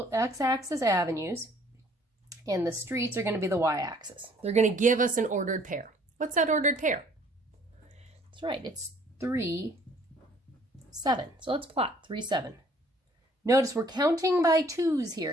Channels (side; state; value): both; normal; correlation 0.58